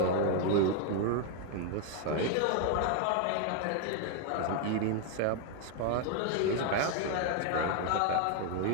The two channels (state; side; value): different; both; correlation 0.01